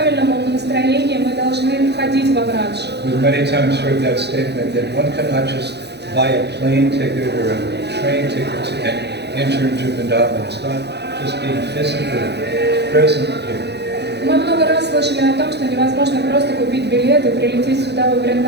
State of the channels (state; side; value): late; left; 0.49 ms